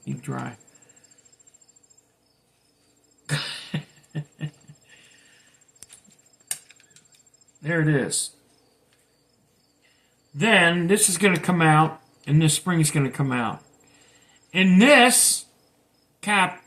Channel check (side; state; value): both; identical; correlation 1.00